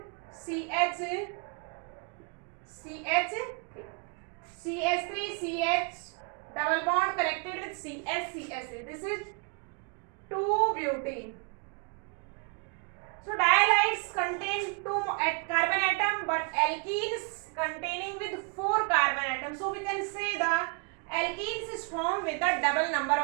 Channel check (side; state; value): left; quieter; 35.0 dB